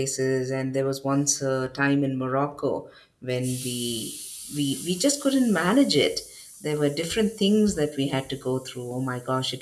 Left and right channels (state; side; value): identical; both; correlation 1.00